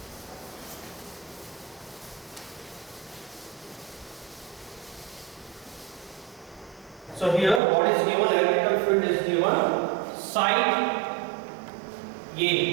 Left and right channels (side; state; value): left; drops out; at 7.6 s